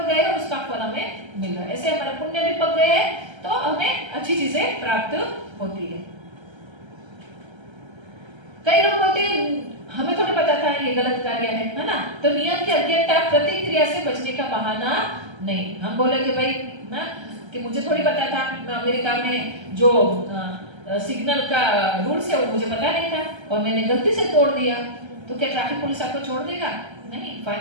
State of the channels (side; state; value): left; late; 1.3 ms